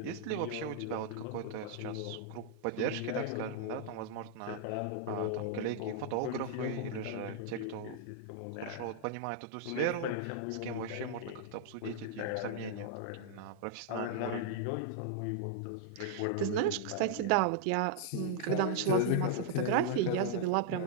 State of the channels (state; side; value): different; both; correlation -0.01